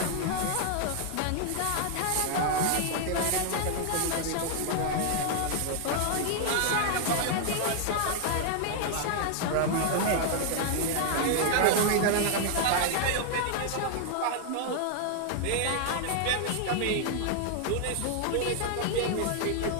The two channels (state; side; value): different; both; correlation 0.00